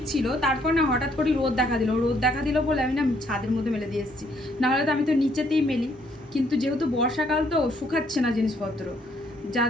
ছিল, তারপর না হঠাৎ করে রোদ দেখা দিল বলে আমি না ছাদের মধ্যে মেলে দিয়ে এসেছি, নাহলে তো আমি তো নিচেতেই মেলি, কিন্তু যেহেতু বর্ষাকাল তো শুকাচ্ছে না জিনিসপত্র, যার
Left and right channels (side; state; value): both; normal; correlation 0.68